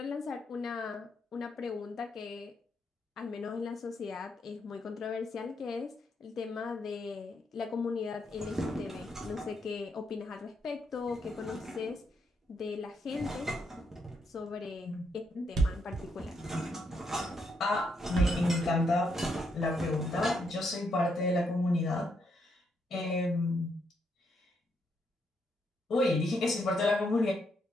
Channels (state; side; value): normal; both; correlation 0.77